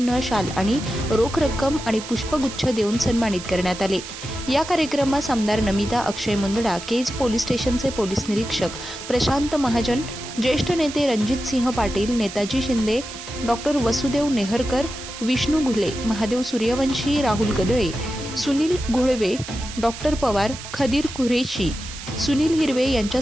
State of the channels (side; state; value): right; noise; hiss, 11 dB below the sound